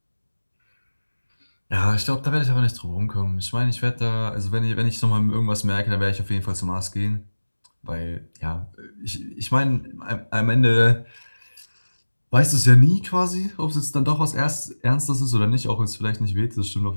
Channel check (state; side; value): inverted; both; correlation -1.00